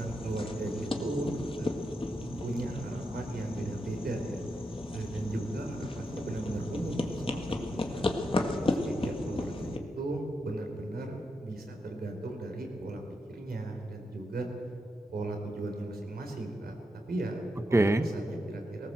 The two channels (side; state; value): both; normal; correlation 0.85